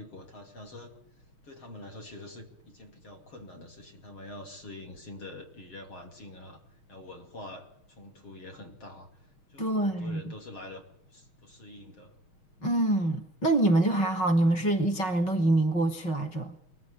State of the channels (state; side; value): late; right; 6.4 ms